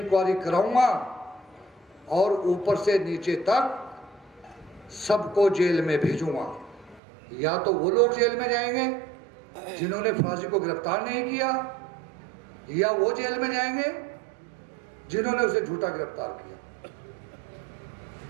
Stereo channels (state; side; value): drops out; left; at 7.0 s